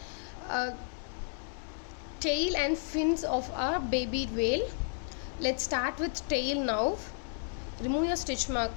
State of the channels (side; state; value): right; silent; 56 dB below the other